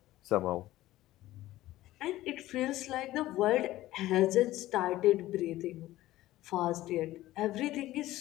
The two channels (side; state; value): right; quieter; 15.9 dB